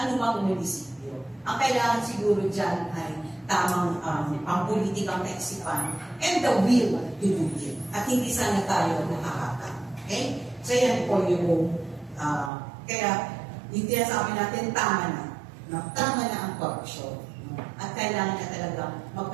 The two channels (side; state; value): left; drops out; at 12.5 s